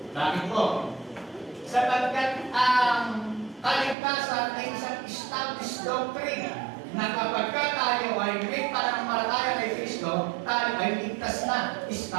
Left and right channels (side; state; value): left; drops out; at 4.0 s